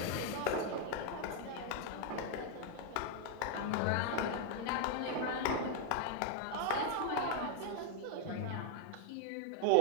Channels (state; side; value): different; both; correlation 0.00